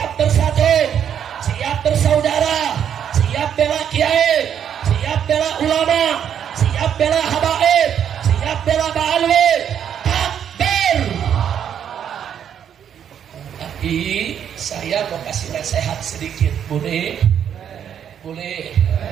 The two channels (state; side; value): quieter; left; 8.9 dB